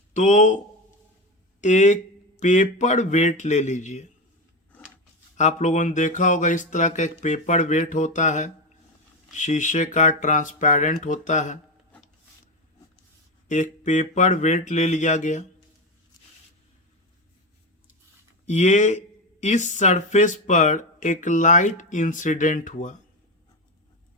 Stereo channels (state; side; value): normal; both; correlation 0.16